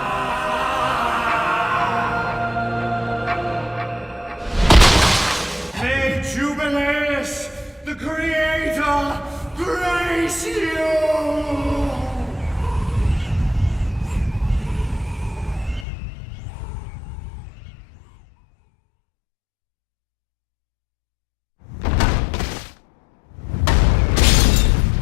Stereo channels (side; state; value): right; drops out; at 15.9 s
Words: May Jubileus, the Creator, grace you!